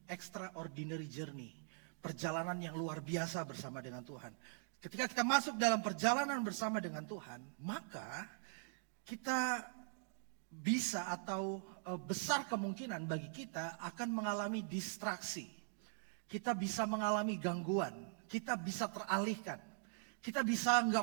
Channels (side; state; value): left; silent; digital silence